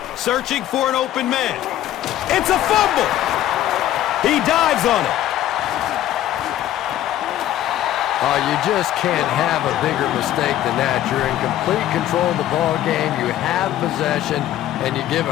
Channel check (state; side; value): quieter; right; 12.8 dB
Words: Searching for an open man. It's a fumble. He dives on it. Oh, you just can't have a bigger mistake than that. You're in complete control of the ball game. You have possession, and you give